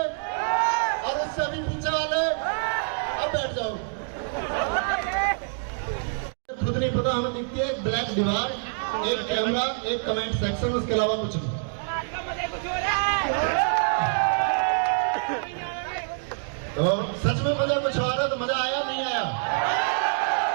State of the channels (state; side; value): silent; left; digital silence